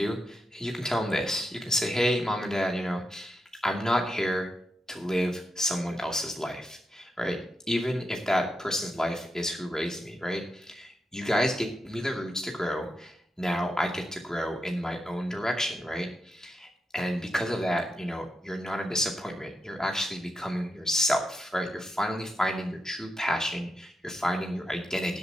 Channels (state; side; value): normal; both; correlation 0.85